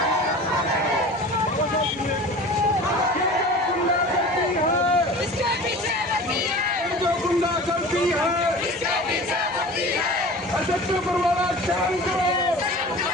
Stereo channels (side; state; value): right; noise; hum, 23 dB below the sound